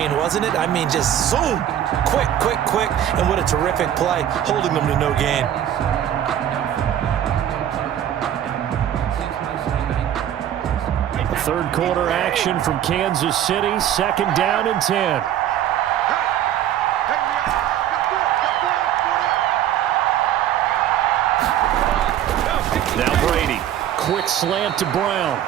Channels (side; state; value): left; quieter; 10.9 dB